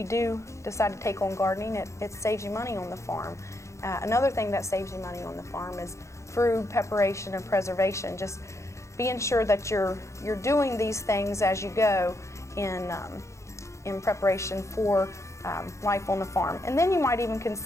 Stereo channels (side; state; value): right; late; 0.14 ms